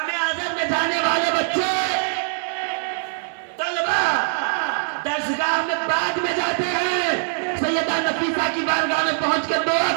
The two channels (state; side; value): silent; left; digital silence